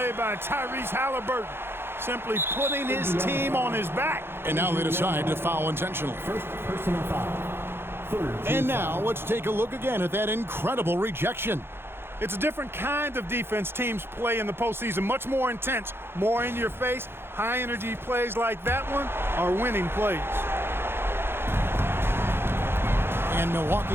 by Tyrese Halliburton. Simply putting his team on his back. And now they decide to foul intentionally. First personal foul. And now let's take a look again at that incredible rejection. It's a different kind of defense teams play in the postseason. Much more intense, more in your face. High-energy plays like that one are winning plays. And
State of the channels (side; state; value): left; late; 0.11 ms